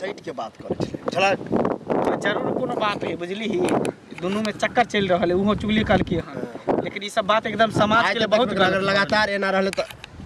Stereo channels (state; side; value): identical; both; correlation 1.00